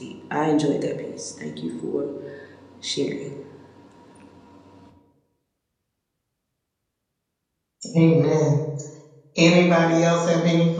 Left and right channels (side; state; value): both; identical; correlation 1.00